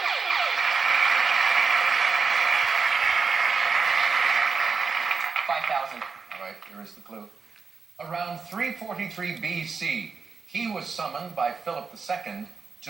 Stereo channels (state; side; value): quieter; left; 4.9 dB